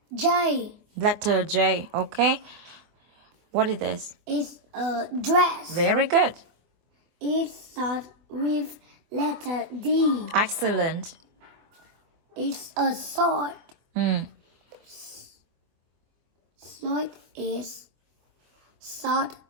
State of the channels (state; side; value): late; left; 24 ms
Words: J. Letter J. Okay. What is this? It's a dress. Very good. It starts with letter D. Excellent. It's a sword. Sword is start